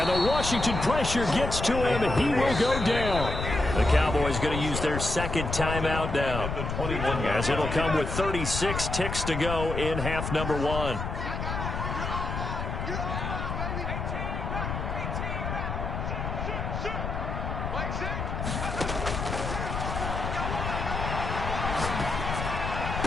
the Washington pressure gets to him, and he will go down. The Cowboys going to use their 2nd timeout now, as it'll come with 36 ticks to go in half number 1.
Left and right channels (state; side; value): noise; left; rumble, 4 dB below the sound